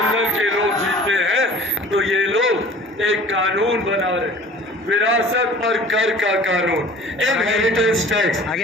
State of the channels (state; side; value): normal; both; correlation 0.46